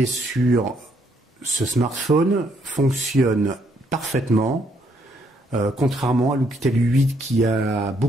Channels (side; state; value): both; normal; correlation 0.71